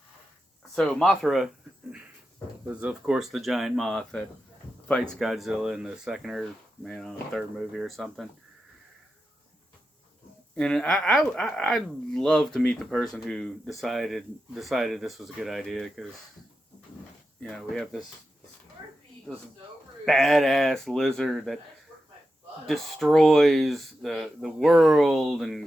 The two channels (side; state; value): both; normal; correlation 0.90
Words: So Mothra was, of course, the giant moth that fights Godzilla in the second or third movie or something. And I'd love to meet the person who decided this was a good idea, because we have this badass lizard that destroys the world